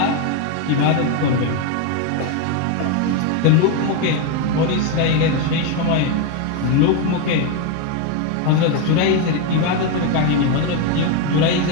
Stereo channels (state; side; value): different; both; correlation 0.02